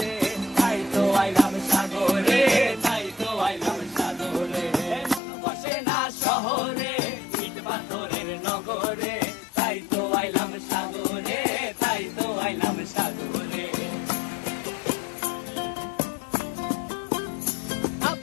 তাই তো আইলাম সাগরে, তাই তো আইলাম সাগরে। মন বসে না শহরে, ইট পাথরের নগরে, তাই তো আইলাম সাগরে, তাই তো আইলাম সাগরে।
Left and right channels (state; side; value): drops out; right; at 5.2 s